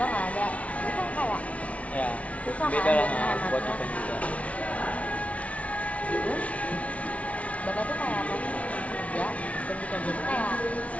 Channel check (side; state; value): right; late; 0.065 ms